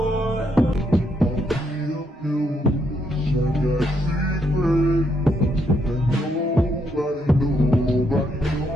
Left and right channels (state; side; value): normal; both; correlation 0.76